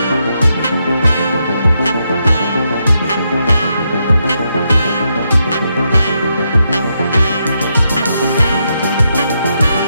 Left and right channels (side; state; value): both; inverted; correlation -0.82